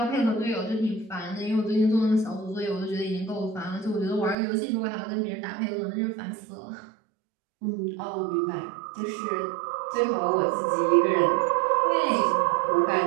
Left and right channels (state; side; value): drops out; left; at 4.4 s